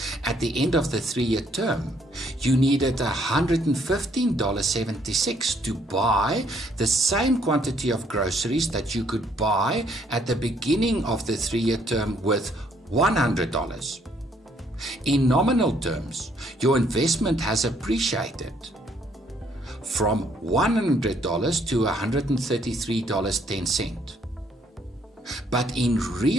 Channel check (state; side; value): normal; both; correlation 0.67